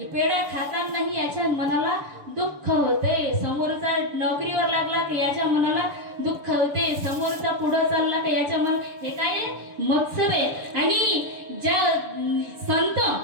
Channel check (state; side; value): late; left; 6.9 ms